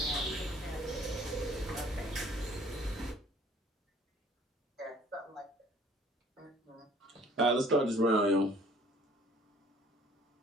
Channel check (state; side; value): normal; both; correlation 0.55